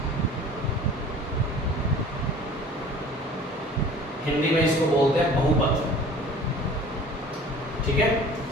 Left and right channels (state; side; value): normal; both; correlation 0.46